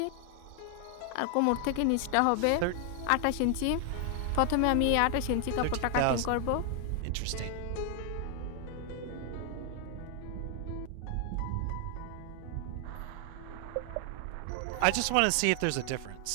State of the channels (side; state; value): both; different; correlation 0.00